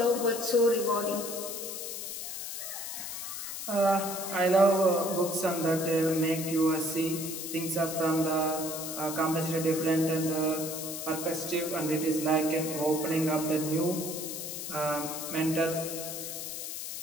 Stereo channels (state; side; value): noise; left; hiss, 6 dB below the sound